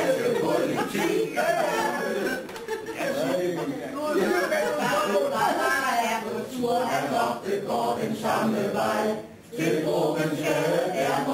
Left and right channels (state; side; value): identical; both; correlation 1.00